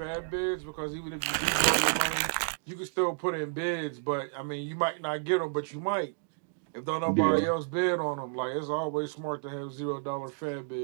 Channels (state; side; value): silent; left; digital silence